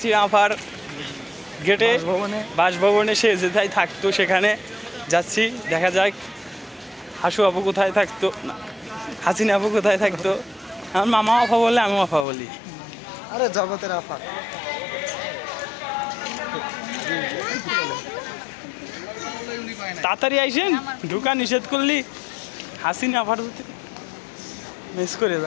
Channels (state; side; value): drops out; right; at 12.2 s